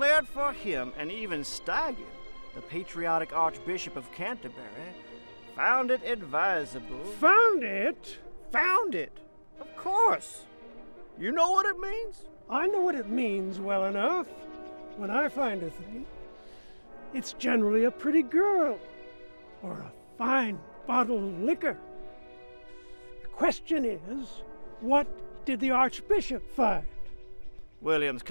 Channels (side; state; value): both; inverted; correlation -1.00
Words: for him, and even Staggen, the patriotic Archbishop of Canterbury, found it advisable. Found it? Found it? Of course. You know what it means? I know what it means well enough. When I find a thing, it's generally a pretty girl or a fine bottle of liquor. The question is, what did the Archbishop find? William's